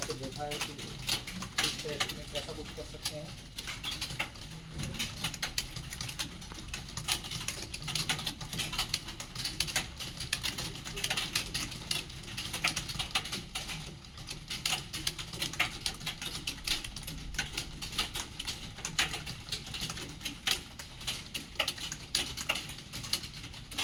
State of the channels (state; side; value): identical; both; correlation 1.00